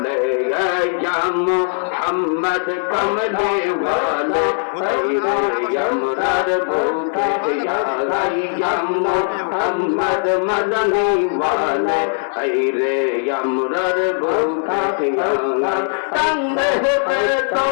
মোহাম্মদ কমলে ওয়ালে আমরার বুকে মোহাম্মদ মদনী ওয়ালে রে আমরার বুকে তঙ্গে তো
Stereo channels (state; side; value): silent; right; digital silence